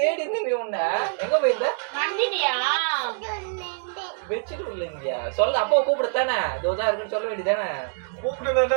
இருந்த நீ உன்ன எங்க போயிருந்த? மந்திரியா பெட்ஷீட் உள்ள இருந்தியா? சொல்ல அப்பாவை கூப்பிடுத்தானே. தோதா இருக்குன்னு சொல்ல வேண்டியதானே. கூப்பிட்டு நல்லா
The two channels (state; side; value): silent; left; 62 dB below the other